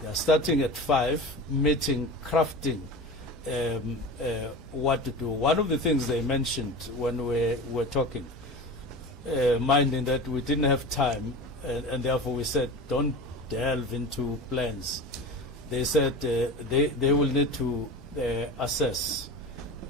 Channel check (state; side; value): normal; both; correlation 0.31